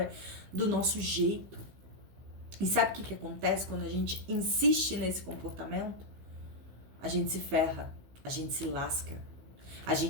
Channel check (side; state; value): left; late; 15 ms